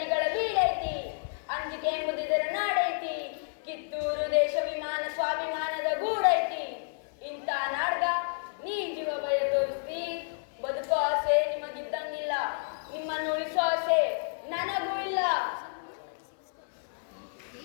ಬೀಡೈತಿ, ಅಂಜಿಕೆ ಎಂಬುದಿದರ ನಾಡೈತಿ, ಕಿತ್ತೂರು ದೇಶ ವಿಮಾನ ಸ್ವಾಭಿಮಾನದ ಗೂಡೈತಿ. ಇಂಥ ನಾಡ್ಗ ನೀ ಜೀವ ಭಯ ತೋರಿಸ್ತಿ. ಬದುಕೋ ಆಸೆ ನಿಮಗಿದ್ದಂಗಿಲ್ಲ, ನಿಮ್ಮನ್ನು ಉಳಿಸೋ ಆಸೆ ನನಗೂ ಇಲ್ಲ.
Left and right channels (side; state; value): right; silent; 58 dB below the other